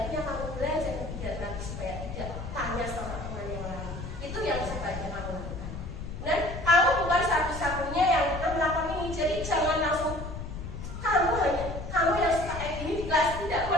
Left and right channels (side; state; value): left; noise; rumble, 8 dB below the sound